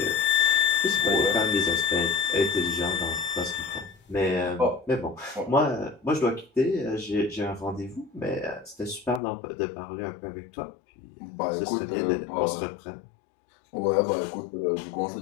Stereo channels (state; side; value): drops out; right; at 9.2 s